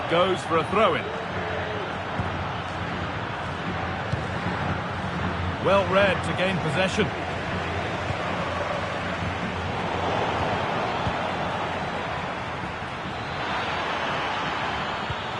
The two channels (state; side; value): identical; both; correlation 1.00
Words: goes for a throw-in. Well read to gain possession.